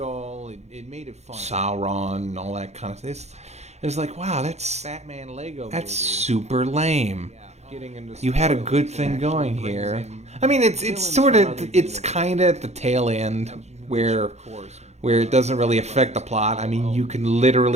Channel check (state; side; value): late; left; 0.32 ms